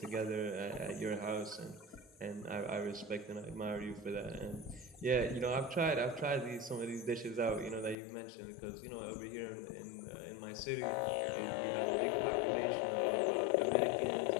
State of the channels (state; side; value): drops out; right; at 8.0 s